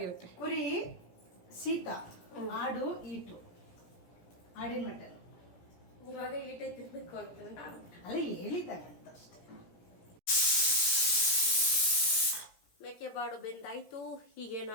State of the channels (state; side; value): late; right; 17 ms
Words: ಕುರಿ ಶೀತ, ಆಡು ಈಟು, ಆಡಿನ ಮಟನ್. ಇವಾಗ ಈಟೆ ತಿನ್ಬೇಕು ಅಂತ ನಾನು ಅಲ್ಲ ಹೇಳಿದ್ದಾಗಂತ ಅಷ್ಟೇ. ಮೇಕೆ ಬಾಡು ಬೆಂದಾಯ್ತು.